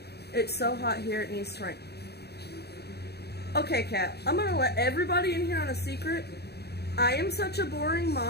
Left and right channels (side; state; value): right; late; 0.48 ms